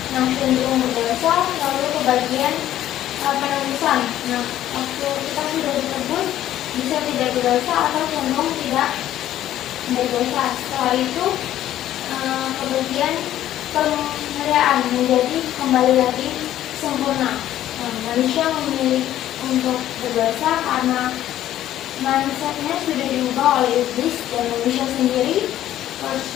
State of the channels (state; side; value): quieter; right; 12.6 dB